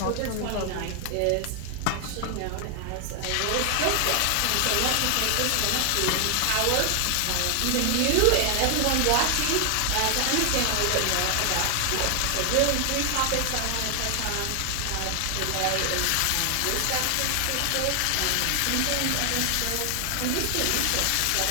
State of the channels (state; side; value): different; both; correlation 0.00